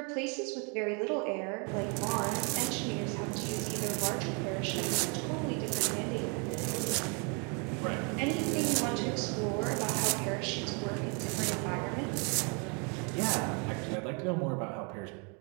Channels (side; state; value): left; quieter; 34.9 dB